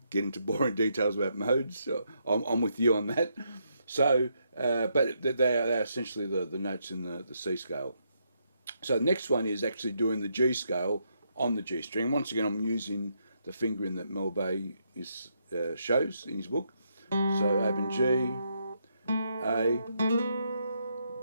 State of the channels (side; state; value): both; inverted; correlation -0.78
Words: get into boring details about modes, so I'm with you on that. So, but they are essentially the notes in the C scale. So the next one is actually doing the G scale on the G string. Once again, I'm using the fingering that Mel Bay shows in his book. So open G, A,